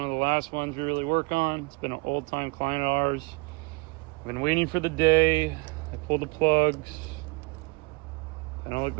of the last ones we really work on. It's been an old time client of ours. Been waiting for the day. I pulled the plugs. They don't look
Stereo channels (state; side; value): quieter; left; 29.5 dB